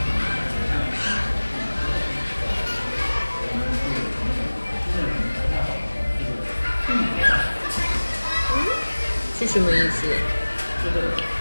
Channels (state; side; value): inverted; both; correlation -1.00